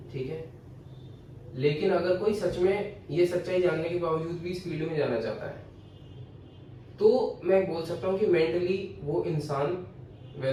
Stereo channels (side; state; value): both; identical; correlation 1.00